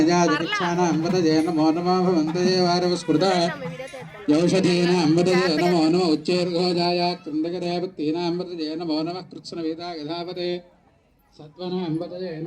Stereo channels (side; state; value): both; identical; correlation 1.00